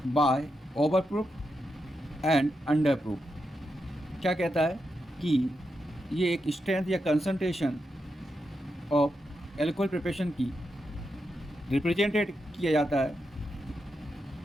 by over proof and under proof. क्या कहता है कि ये एक स्ट्रेंथ या कंसंट्रेशन ऑफ एल्कोहल प्रिपरेशन की रिप्रेजेंटेड किया जाता है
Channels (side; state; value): both; normal; correlation 0.85